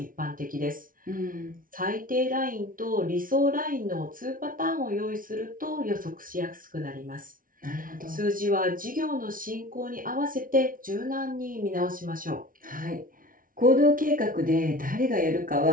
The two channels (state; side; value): late; left; 0.40 ms